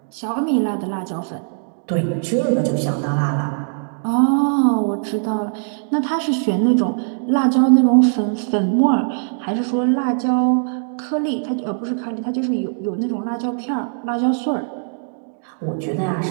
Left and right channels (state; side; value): silent; left; digital silence